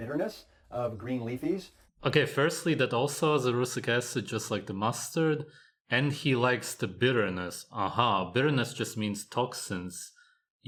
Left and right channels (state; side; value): identical; both; correlation 1.00